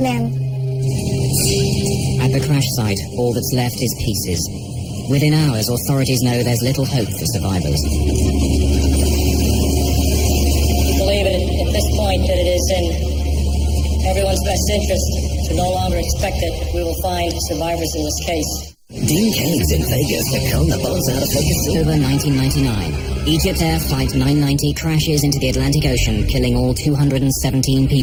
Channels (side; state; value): both; identical; correlation 1.00